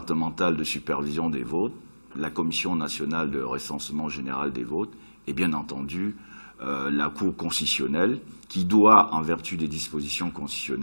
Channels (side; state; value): both; inverted; correlation -1.00